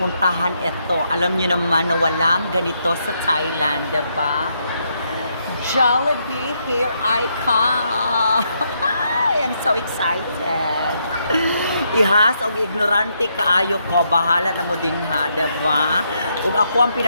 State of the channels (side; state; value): both; inverted; correlation -0.77